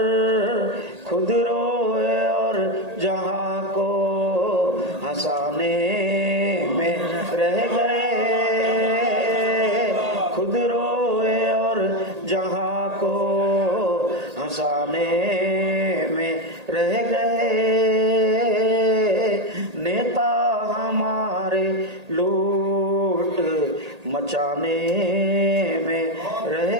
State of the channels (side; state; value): left; late; 1.8 ms